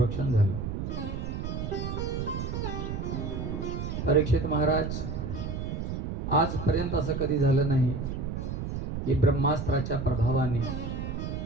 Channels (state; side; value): noise; right; rumble, 4 dB below the sound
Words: झालं। परीक्षित महाराज, आजपर्यंत असं कधी झालं नाही की ब्रह्मास्त्राच्या प्रभावाने